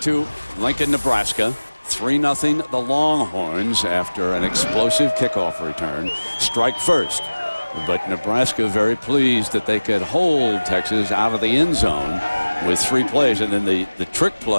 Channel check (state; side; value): inverted; both; correlation -1.00